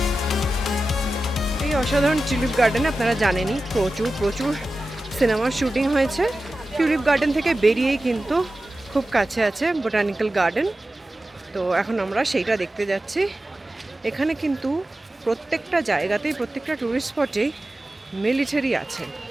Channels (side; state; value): both; normal; correlation 0.94